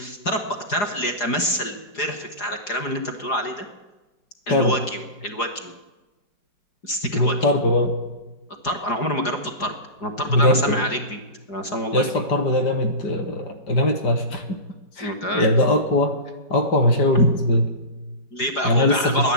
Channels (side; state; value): right; late; 4.8 ms